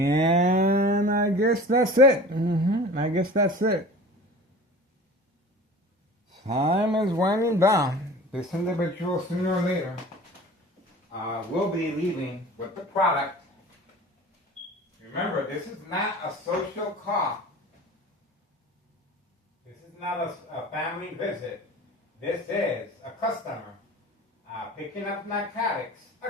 I guess that's it. I guess that's it. Time is winding down. This individual, sooner or later, will be leaving with the product. Remember, this is not a social call. This is not a family visit. This is a customer picking up narcotics.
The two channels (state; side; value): normal; both; correlation 0.40